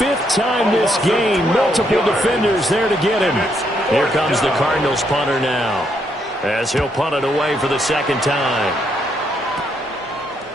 time this game. Multiple defenders there to get him. Here comes the Cardinals punter now, as he'll punt it away for the 2nd time.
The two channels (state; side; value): normal; both; correlation 0.75